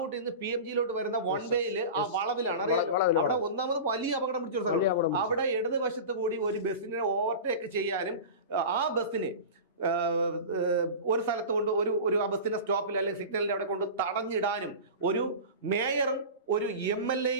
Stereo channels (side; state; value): both; inverted; correlation -0.31